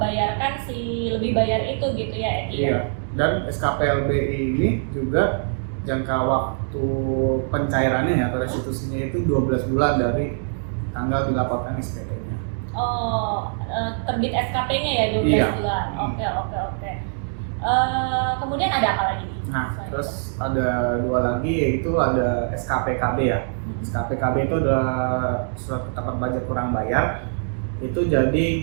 si lebih bayar itu gitu ya, Eki? Iya. Dan SKPLB ini juga jangka waktu pencairannya ya atau restitusinya itu 12 bulan dari tanggal dilaporkan SPT-nya. Oh, terbit SKP-nya ya 12 bulan. Oke. Kemudian ada apa lagi? Nah, terus ada dua lagi, yaitu ada SKPKB ya. SKPKB itu adalah surat ketetapan pajak kurang bayar. Itu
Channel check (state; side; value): silent; left; digital silence